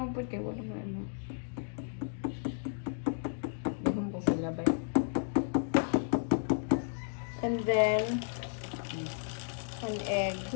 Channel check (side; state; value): right; silent; digital silence